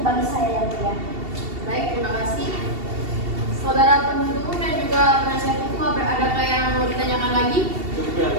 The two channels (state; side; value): late; left; 2.7 ms